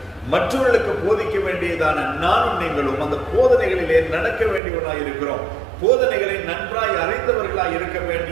மற்றவர்களுக்கு போதிக்க வேண்டியதான நானும் நீங்களும் அந்த போதனைகளிலே நடக்க வேண்டியவர்களாய் இருக்கிறோம். போதனைகளை நன்றாய் அறிந்தவர்களாய் இருக்க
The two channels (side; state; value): left; drops out; at 4.6 s